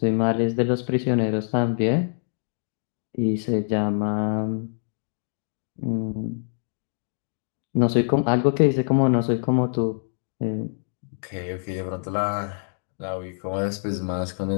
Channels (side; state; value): right; silent; digital silence